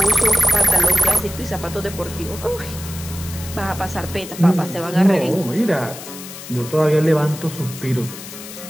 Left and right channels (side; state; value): left; noise; hiss, 13 dB below the sound